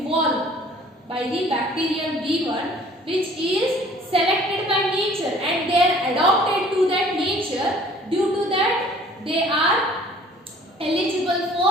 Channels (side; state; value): both; normal; correlation 0.53